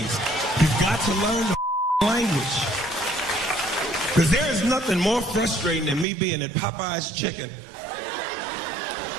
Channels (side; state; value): left; drops out; at 6.1 s